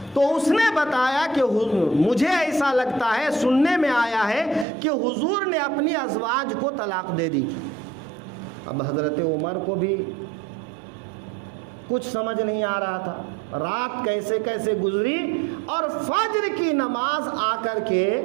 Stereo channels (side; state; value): left; drops out; at 4.7 s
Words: تو اس نے بتایا کہ مجھے ایسا لگتا ہے، سننے میں آیا ہے کہ حضور نے اپنی ازواج کو طلاق دے دی۔ اب حضرت عمر کو بھی کچھ سمجھ نہیں آ رہا تھا، رات کیسے کیسے گزری، اور فجر کی نماز آ کر کے